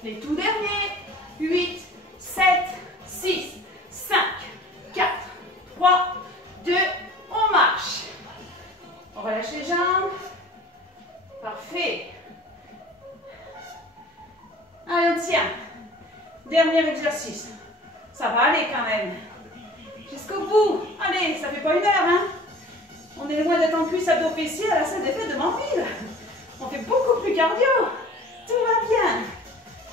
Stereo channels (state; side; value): normal; both; correlation 0.45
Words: Les tout derniers. 8, 7, 6, 5, 4, 3, 2, on marche. On relâche les jambes. Parfait. Allez, on tient. Dernier exercice. Ça va aller quand même. Jusqu'au bout. Allez, ça fait pas 1 heure, hein. On est loin d'être en cuisse abdos fessiers à la salle des fêtes de Manville. On fait beaucoup plus cardio. Tout va bien.